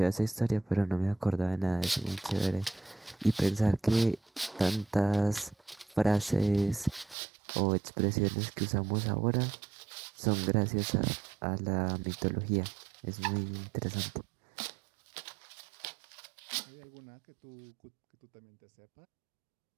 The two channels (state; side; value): drops out; left; at 7.2 s